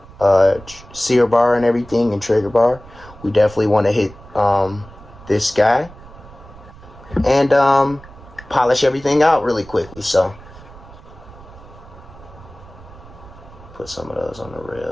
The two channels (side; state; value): right; noise; rumble, 20 dB below the sound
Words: sear bar and everything, and trigger bar. We definitely want to hit this guy and polish everything out really quickly. So put some of those on the